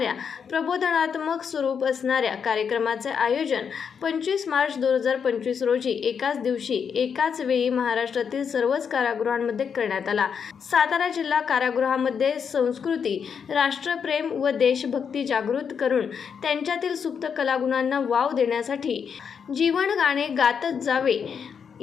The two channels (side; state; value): right; quieter; 6.8 dB